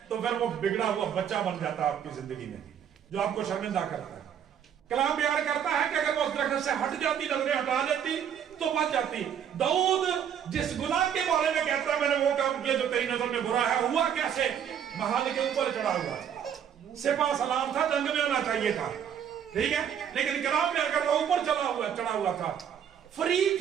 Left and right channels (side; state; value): left; quieter; 8.8 dB